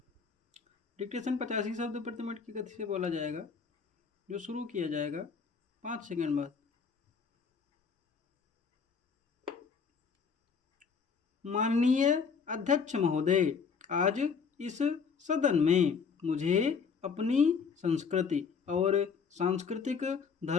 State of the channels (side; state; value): right; quieter; 5.8 dB